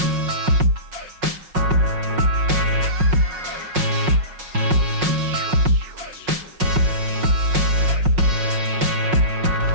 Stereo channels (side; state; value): left; late; 5.5 ms